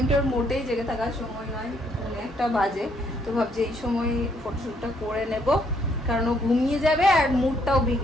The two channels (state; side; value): normal; both; correlation 0.70